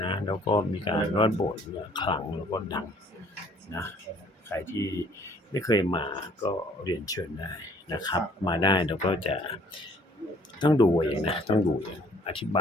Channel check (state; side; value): normal; both; correlation 0.59